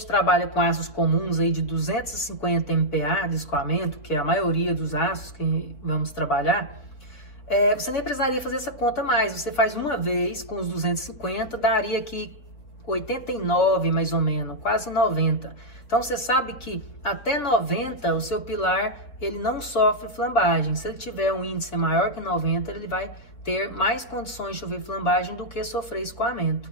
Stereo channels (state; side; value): late; right; 4.2 ms